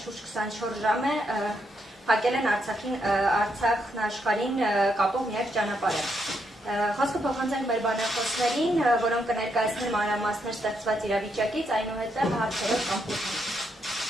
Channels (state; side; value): normal; both; correlation 0.78